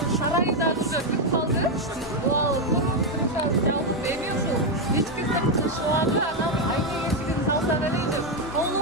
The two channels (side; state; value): both; normal; correlation 0.04